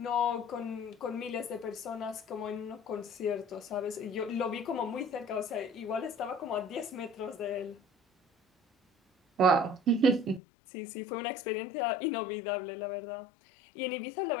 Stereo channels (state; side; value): drops out; right; at 10.4 s